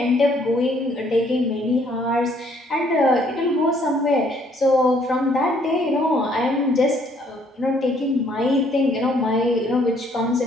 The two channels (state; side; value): normal; both; correlation 0.65